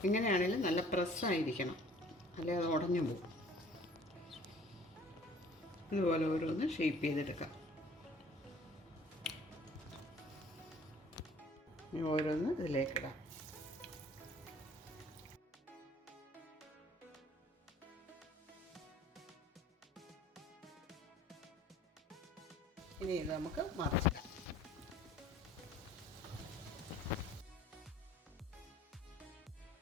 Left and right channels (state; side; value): normal; both; correlation 0.53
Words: ഇങ്ങനെയാണെങ്കിലും നല്ല പ്രസ്സായിരിക്കണം, അല്ലെ അത് ഉടഞ്ഞു പോകും. ഇതുപോലെ ഓരോന്ന് ഷേപ്പ് ചെയ്തെടുക്കാം. ഓരോന്ന് ഇതിലേക്കിടാം. ഇനി ഇത് നമുക്ക് മറിച്ചിടാം.